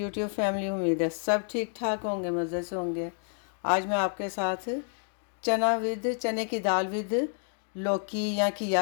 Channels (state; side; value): silent; right; 58 dB below the other